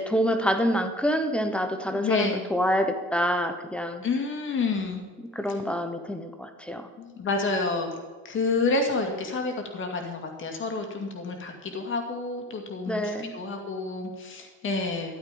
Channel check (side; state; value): both; normal; correlation 0.45